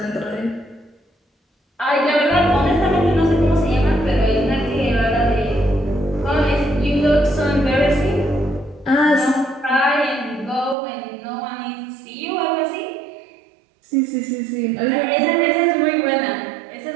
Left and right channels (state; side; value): drops out; left; at 10.8 s